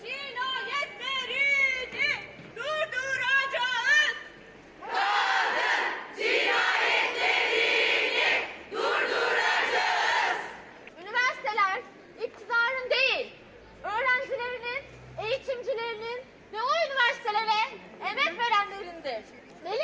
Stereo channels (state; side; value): identical; both; correlation 1.00